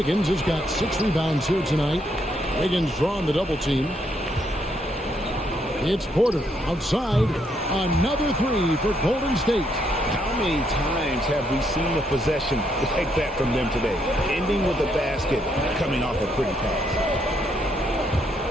has got 6 rebounds here tonight. Wiggins drawing the double team. It's Porter outside. Another 3 for Golden State. How many times have we seen a possession like that from them today? Ending with a basket, coming off a pretty pass.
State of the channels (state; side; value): normal; both; correlation 0.74